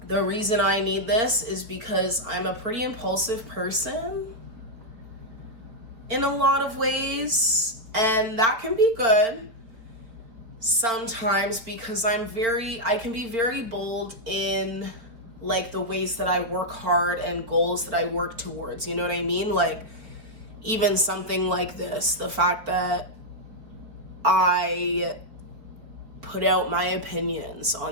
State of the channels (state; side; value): late; left; 4.2 ms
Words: The reason I need this is because I'm a pretty impulsive person in a lot of ways, and that can be good sometimes because I can be very bold in like the ways that I work hard and goals that I work towards. You know what I mean? Like, even something like this, the fact that I put out my opinions